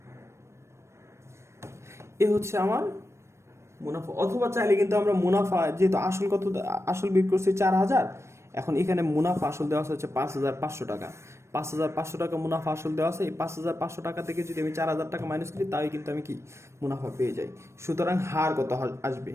এ হচ্ছে আমার মুনাফা। অথবা চাইলে কিন্তু আমরা মুনাফা, যেহেতু আসল কত, আসল বের করছি 4,000, এখন এখানে মুনাফা আসল দেওয়া হচ্ছে 5,500 টাকা। 5,500 টাকা মুনাফা আসল দেওয়া আছে। এই 5,500 টাকা থেকে যদি আমি 4,000 টাকা মাইনাস করি, তাই কিন্তু আমি কি মুনাফা পেয়ে যাই। সুতরাং হার কত আসবে,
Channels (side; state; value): left; late; 0.13 ms